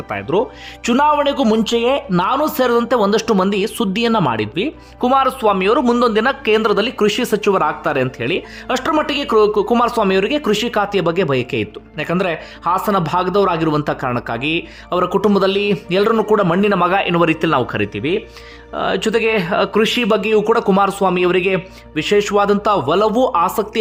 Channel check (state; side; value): identical; both; correlation 1.00